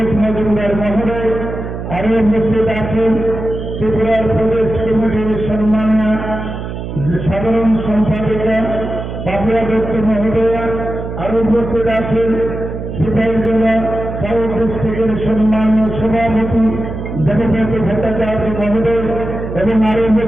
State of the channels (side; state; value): right; noise; hum, 7 dB below the sound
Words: মজুমদার মহোদয়। আরো উপস্থিত আছেন ত্রিপুরার প্রদেশ কমিটির সম্মানীয় সাধারণ সম্পাদিকা পাপিয়া দত্ত মহোদয়া। আরো উপস্থিত আছেন সিপাহীজলা সাউথ ডিস্ট্রিক্টের সম্মানীয় সভাপতি দেবব্রত ভট্টাচার্য মহোদয় এবং আরো